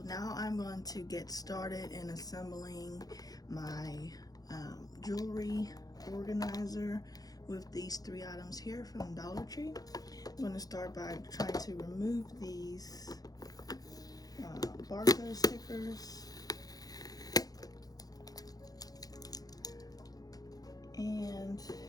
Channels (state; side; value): late; right; 0.18 ms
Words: now I'm going to get started in assembling my jewelry organizer with these three items here from Dollar Tree. I'm going to start by trying to remove these barcode stickers. And